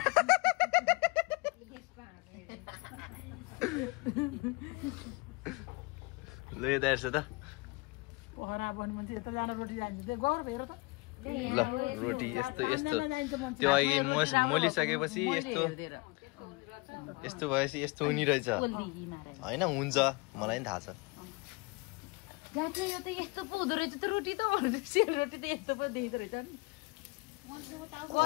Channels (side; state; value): right; quieter; 26.8 dB